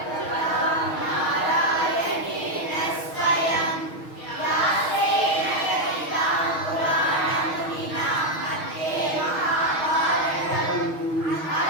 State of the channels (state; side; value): late; right; 6.3 ms